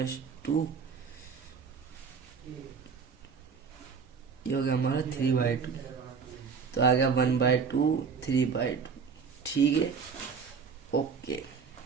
2, ये हो गया हमारा 3/2, तो आ गया 1/2 3/2। ठीक है, ओके।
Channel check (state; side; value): quieter; left; 5.8 dB